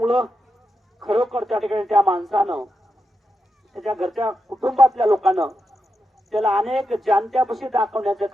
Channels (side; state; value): both; normal; correlation 0.86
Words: खरोखर त्या ठिकाणी त्या माणसानं, त्याच्या घरच्या कुटुंबातल्या लोकांना त्याला अनेक जाणत्यापाशी दाखवण्याचं